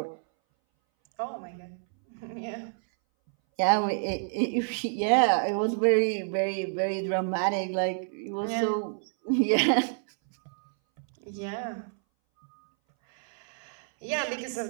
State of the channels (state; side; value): silent; left; 59 dB below the other